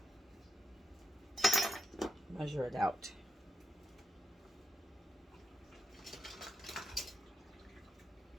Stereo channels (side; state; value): both; normal; correlation 0.87